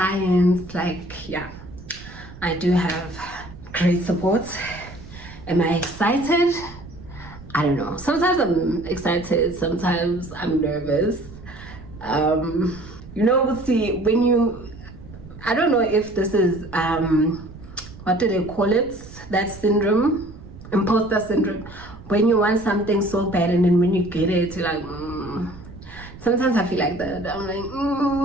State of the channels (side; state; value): right; noise; rumble, 17 dB below the sound